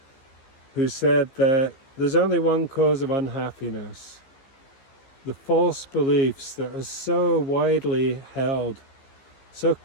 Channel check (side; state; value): right; late; 15 ms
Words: who said that there's only one cause of unhappiness: the false beliefs that are so widely held, so